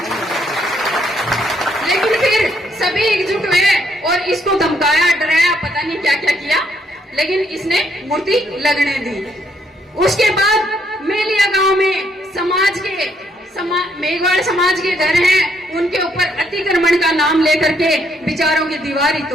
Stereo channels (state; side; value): normal; both; correlation 0.71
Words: लेकिन फिर सभी एकजुट हुए और इसको धमकाया, डराया, पता नहीं क्या क्या किया, लेकिन इसने मूर्ति लगने दी। उसके बाद मेलिया गांव में मेघवाल समाज के घर हैं, उनके ऊपर अतिक्रमण का नाम लेकर के विचारों की दीवार ही